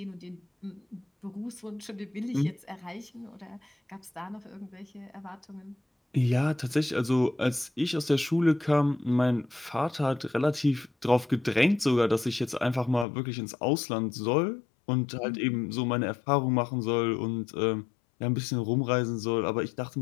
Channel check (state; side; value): drops out; right; at 13.1 s